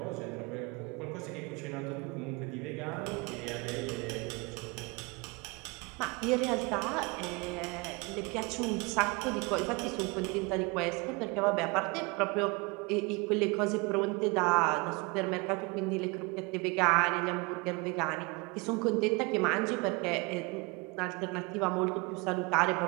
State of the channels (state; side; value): quieter; left; 27.5 dB